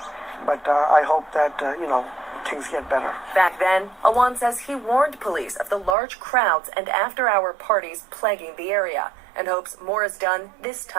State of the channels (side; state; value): left; drops out; at 6.0 s